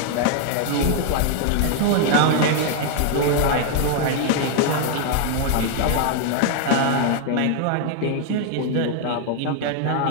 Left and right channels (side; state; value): both; different; correlation 0.00